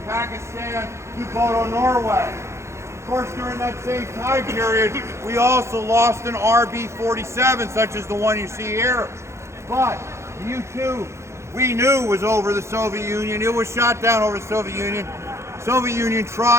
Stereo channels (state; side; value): late; left; 0.13 ms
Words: Pakistan to Bodo, Norway. Of course, during that same time period, we also lost an RB-47, such as the one you see here. But the U-2, we knew was over the Soviet Union. It was shot down over the Soviet Union. Soviet Union